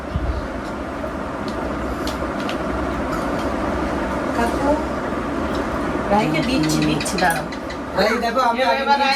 কাকু রাইকে দিচ্ছি দাঁড়াও। রাই দেখো, আমি আগে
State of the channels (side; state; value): both; identical; correlation 1.00